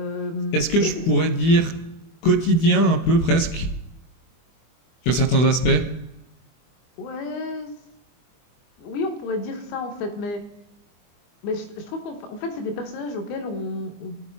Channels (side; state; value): right; late; 24 ms